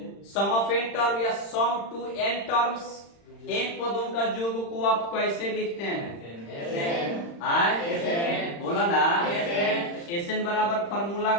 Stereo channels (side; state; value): right; late; 35 ms